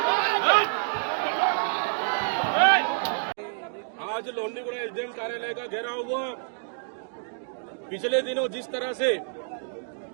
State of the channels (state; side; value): silent; left; digital silence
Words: आज लोंडीगुड़ा एसडीएम कार्यालय का घेराव हुआ। पिछले दिनों जिस तरह से